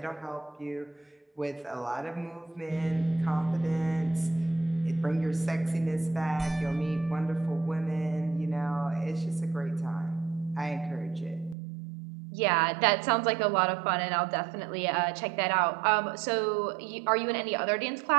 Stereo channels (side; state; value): left; drops out; at 11.6 s